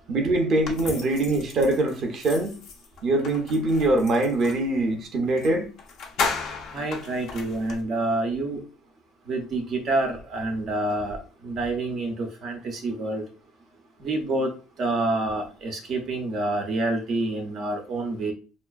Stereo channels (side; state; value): both; normal; correlation 0.61